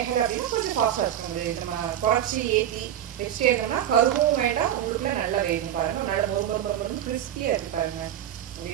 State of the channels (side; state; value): left; quieter; 10.9 dB